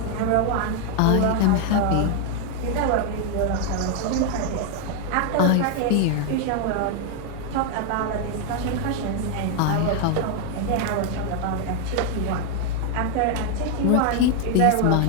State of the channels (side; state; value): both; different; correlation 0.00